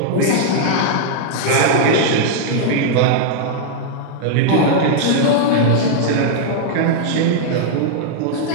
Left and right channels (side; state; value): both; different; correlation -0.01